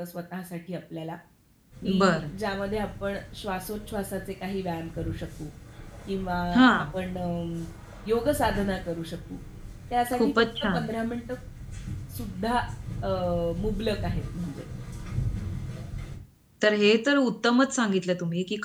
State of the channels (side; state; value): both; identical; correlation 1.00